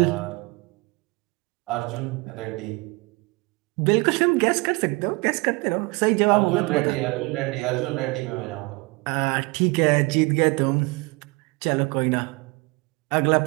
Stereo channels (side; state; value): left; quieter; 26.5 dB